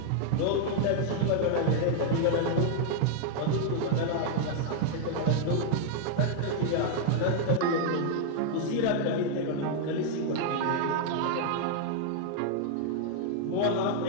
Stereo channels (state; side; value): different; both; correlation -0.01